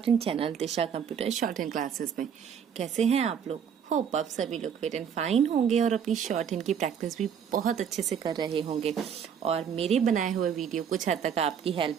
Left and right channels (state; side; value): quieter; left; 7.8 dB